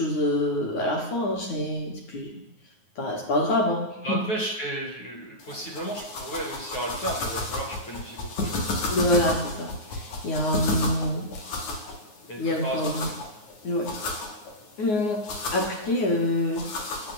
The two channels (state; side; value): late; right; 9.5 ms